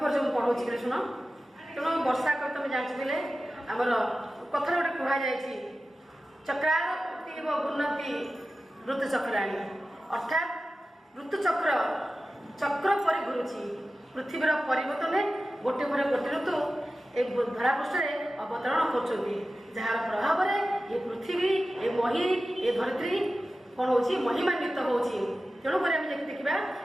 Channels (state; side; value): normal; both; correlation 0.94